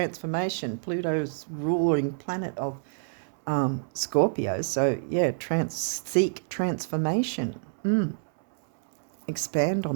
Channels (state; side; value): silent; left; 60 dB below the other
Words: Pluto's ruling planet of Scorpio. So, yeah, seek transformation. Expand